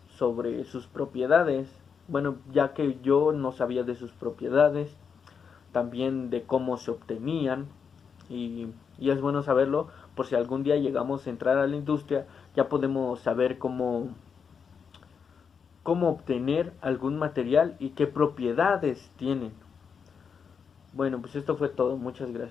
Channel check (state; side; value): quieter; right; 6.4 dB